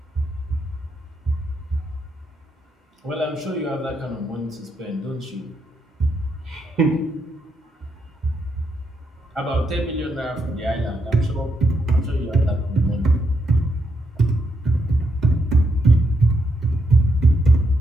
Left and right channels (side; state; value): both; normal; correlation 0.79